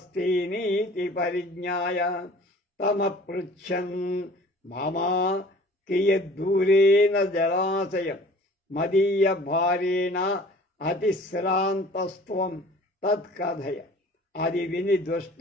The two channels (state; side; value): normal; both; correlation 0.48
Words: పరిజ్ఞాయ తమపృచ్ఛన్ మామా కియద్దూరేణ జలాశయం మదీయ భారేణ అతిశ్రాంతస్త్వం తత్కథయ. అది విని